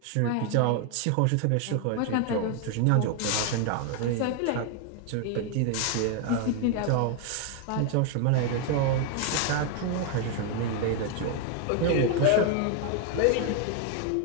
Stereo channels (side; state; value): both; different; correlation 0.01